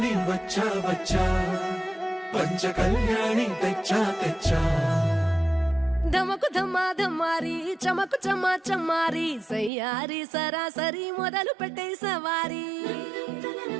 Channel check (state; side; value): drops out; left; at 9.7 s